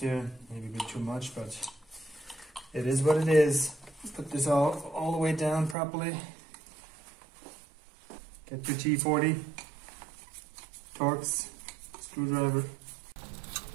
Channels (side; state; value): left; drops out; at 5.8 s